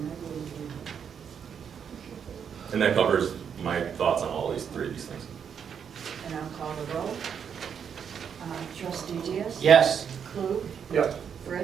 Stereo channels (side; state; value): left; quieter; 7.5 dB